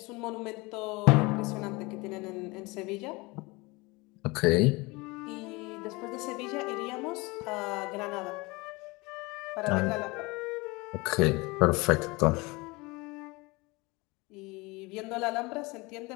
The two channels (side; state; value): right; quieter; 24.5 dB